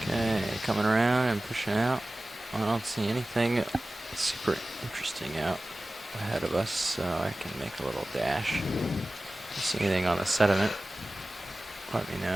Okay, coming around and pushing out. I don't see anything super interesting out ahead of us, so I can make a little dash. If you see anything on the sediment, let me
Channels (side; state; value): both; normal; correlation 0.97